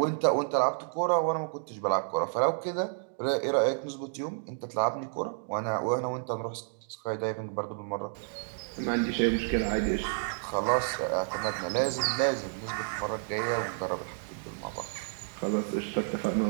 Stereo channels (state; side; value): silent; left; digital silence